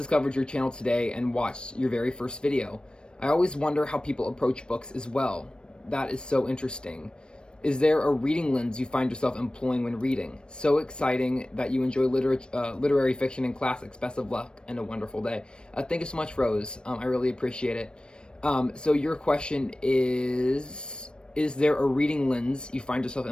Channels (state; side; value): late; right; 0.053 ms